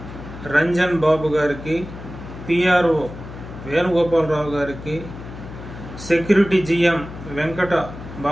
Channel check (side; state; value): left; noise; hum, 13 dB below the sound